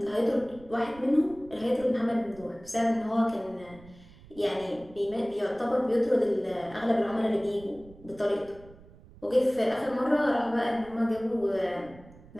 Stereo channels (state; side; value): noise; right; rumble, 22 dB below the sound